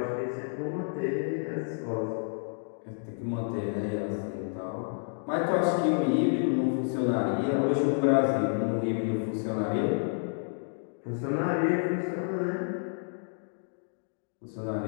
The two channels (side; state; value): right; silent; digital silence